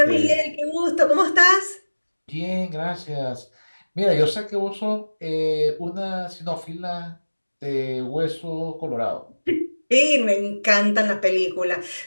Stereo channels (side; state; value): both; inverted; correlation -1.00